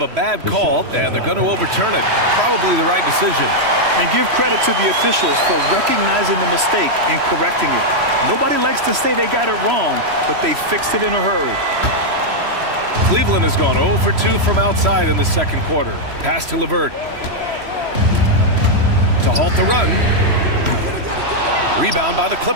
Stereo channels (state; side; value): late; left; 3.0 ms